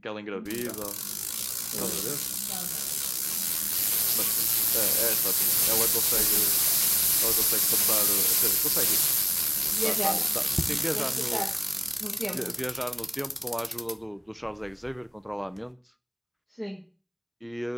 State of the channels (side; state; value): both; identical; correlation 1.00